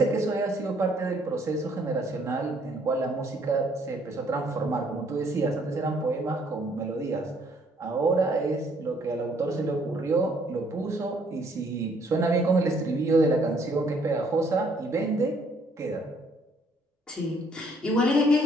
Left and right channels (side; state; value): both; normal; correlation 0.65